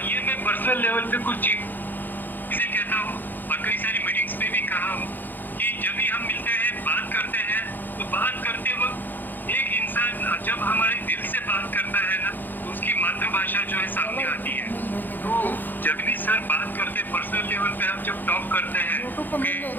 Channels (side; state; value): right; late; 0.088 ms